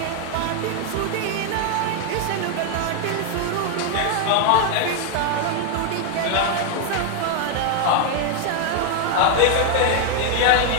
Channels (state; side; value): different; both; correlation 0.01